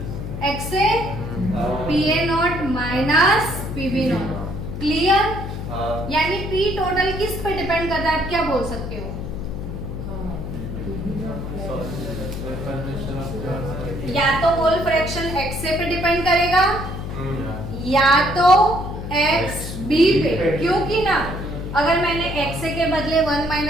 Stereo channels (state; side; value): noise; left; hum, 7 dB below the sound